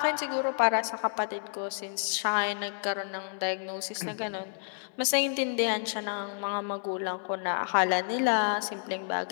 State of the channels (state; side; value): silent; right; 58 dB below the other